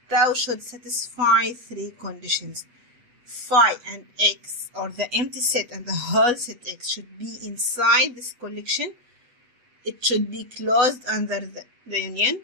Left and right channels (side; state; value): left; late; 8.2 ms